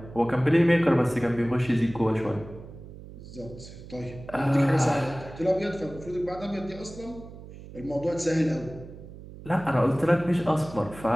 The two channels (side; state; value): right; noise; hum, 15 dB below the sound